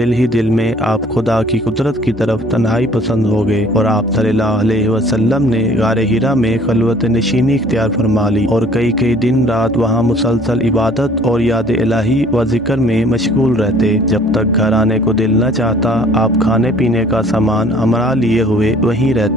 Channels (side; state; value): both; normal; correlation 0.54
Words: ही दिल में आप खुदा की कुदरत की तरफ तन्हाई पसंद हो गए और आप सल्लल्लाहु अलैहि वसल्लम ने गारे हिरा में खलवत नशीनी इख्तियार फरमा ली और कई कई दिन रात वहाँ मुसलसल इबादत और याद इलाही व जिक्र में मशगूल रहते। जब तक घर आने को दिल न चाहता आप खाने पीने का सामान हमरा लिए हुए वहीं